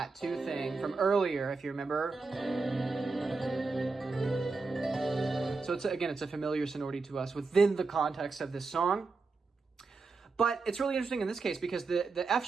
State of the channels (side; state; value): left; quieter; 4.1 dB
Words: 2 thing from earlier, if you remember. So it's a familiar sonority to us within the context of this song. But it's really interesting in this case because the F